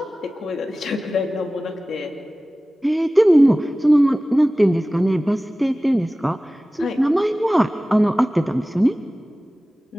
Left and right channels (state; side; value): normal; both; correlation 0.97